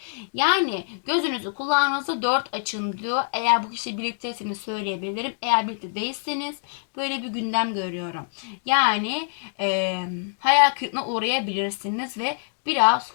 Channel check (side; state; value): right; silent; digital silence